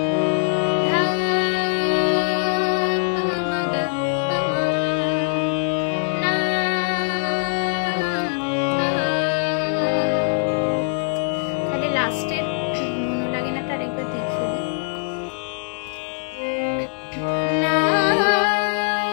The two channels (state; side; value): silent; right; 64 dB below the other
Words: ধা পা মা গা পা মা, না তাহলে লাস্টের মনো লাগে না তার একবার দেখিয়ে দিই। না